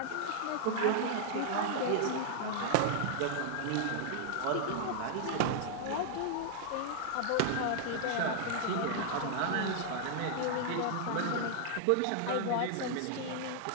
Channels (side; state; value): both; different; correlation -0.01